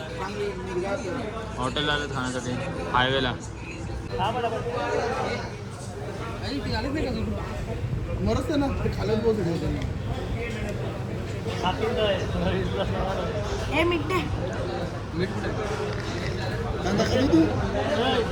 हॉटेलला आलेत खाण्यासाठी हायवेला. मरत ना ते खालच पोहोचले. मिठे कांदा खाली तू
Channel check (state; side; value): identical; both; correlation 1.00